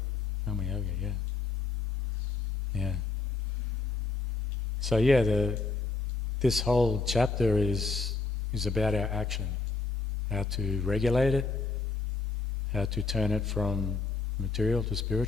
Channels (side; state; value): right; quieter; 4.0 dB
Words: Karma Yoga, yeah. So this whole chapter is about our action, how to regulate it, how to turn it from material to